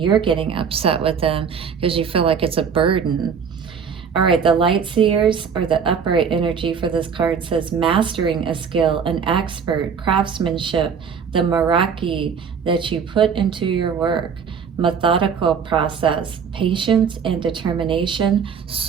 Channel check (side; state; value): left; quieter; 6.6 dB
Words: getting upset with them because you feel like it's a burden. All right, the Light Seers, or the upright energy for this card, says mastering a skill, an expert, craftsmanship, the Meraki that you put into your work, methodical process, patience and determination,